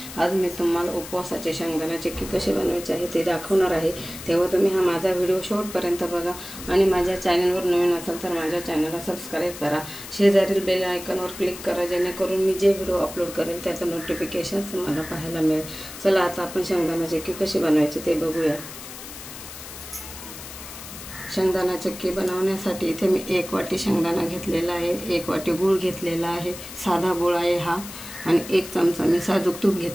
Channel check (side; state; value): left; noise; hiss, 13 dB below the sound